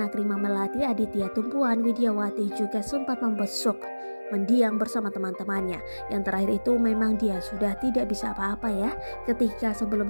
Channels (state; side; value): inverted; both; correlation -1.00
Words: Rima Melati, Aditya Tumpuan, Widyawati juga sempat membesuk mendiang bersama teman-temannya. Yang terakhir itu memang dia sudah tidak bisa apa-apa ya. Ketika